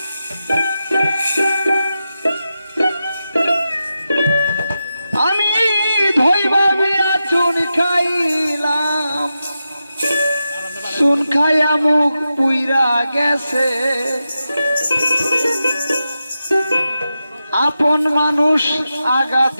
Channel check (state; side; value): inverted; both; correlation -0.90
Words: আমি ধইবা বিয়া চুন খাইলাম চুন খাইয়া মুখ পুইরা গেছে আপন মানুষ আঘাত